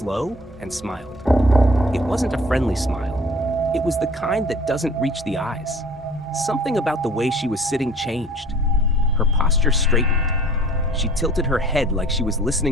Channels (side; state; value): both; normal; correlation 0.49